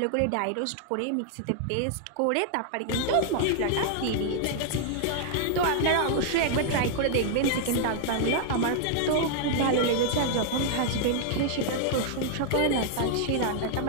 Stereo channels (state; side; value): different; both; correlation 0.00